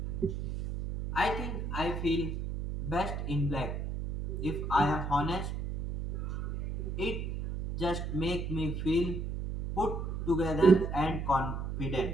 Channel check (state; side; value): noise; right; hum, 3 dB below the sound